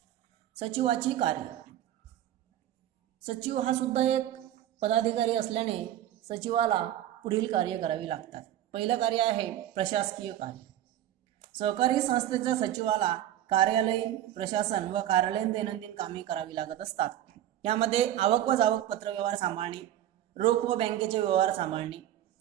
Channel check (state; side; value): quieter; left; 12.4 dB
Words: सचिवाची कार्य. सचिव हा सुद्धा एक पदाधिकारी असल्याने सचिवाला पुढील कार्य करावी लागतात. पहिलं कार्य आहे प्रशासकीय कार्य. सहकारी संस्थेच्या सचिवाला कार्यालयीन प्रशासन व कार्यालयीन दैनंदिन कामे करावी लागत असतात. यामध्ये आवक व जावक पत्र व्यवहार सांभाळणे, रोख व बँकेचे व्यवहार सांभाळणे,